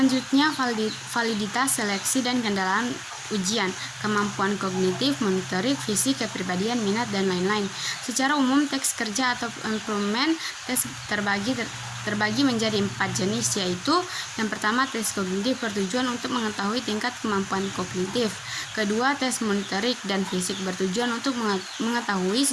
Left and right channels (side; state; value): both; identical; correlation 1.00